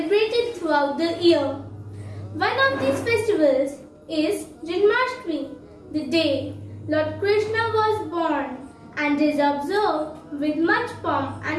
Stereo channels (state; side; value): identical; both; correlation 1.00